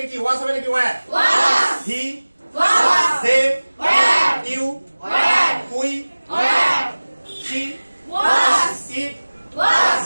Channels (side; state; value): both; inverted; correlation -1.00